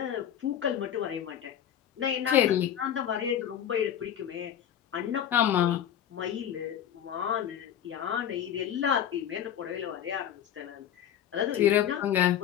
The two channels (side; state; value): right; quieter; 10.0 dB